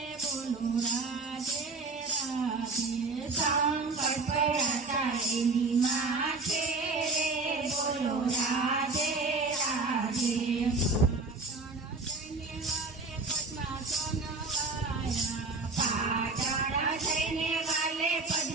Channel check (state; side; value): quieter; left; 3.7 dB